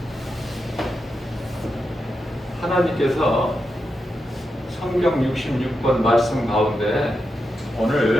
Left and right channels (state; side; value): normal; both; correlation 0.87